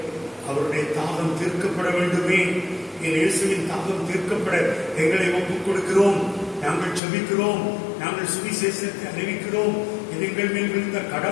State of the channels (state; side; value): drops out; right; at 7.0 s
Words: அவருடைய தாகம் தீர்க்கப்பட வேண்டுமே, என் இயேசுவின் தாகம் தீர்க்கப்பட எங்களை ஒப்புக் கொடுக்கிறோம், நாங்கள் ஜெபிக்கிறோம், நாங்கள் சுவிசேஷத்தை அறிவிக்கிறோம், இது எங்கள் மேல் விழுந்த